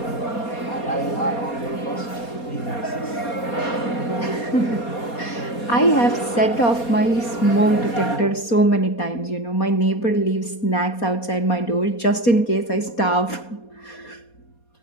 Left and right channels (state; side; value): late; right; 4.2 ms